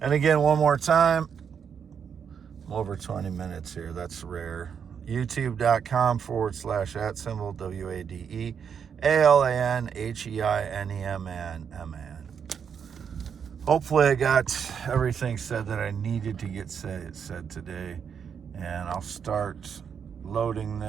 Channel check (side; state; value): left; quieter; 7.2 dB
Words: again, one more time. I'm over 20 minutes here. That's rare. youtube.com/@WADEALANHEINEMAN. Hopefully I got everything said that I needed to get said today. And I'll start loading